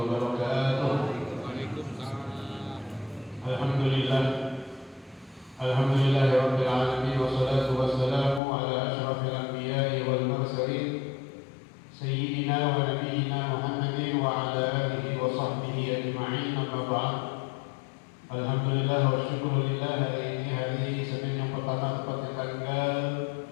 الحمد لله رب العالمين والصلاة والسلام على أشرف الأنبياء والمرسلين سيدنا ونبينا محمد وعلى آله وصحبه أجمعين. أما بعد. Alhamdulillah wa syukurillah, hari ini hari Senin yang pertama tepatnya tanggal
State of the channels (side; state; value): right; drops out; at 8.4 s